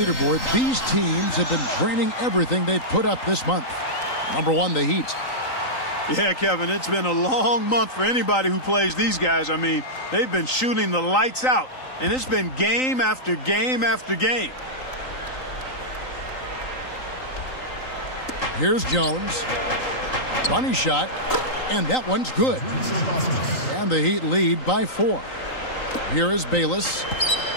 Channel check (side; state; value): right; late; 3.9 ms